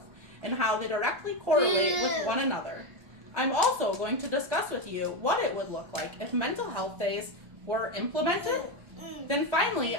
and how they directly correlate with one another. I'm also going to discuss with you what it would look like if mental health days were implemented. Then finally,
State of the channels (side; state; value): left; late; 1.4 ms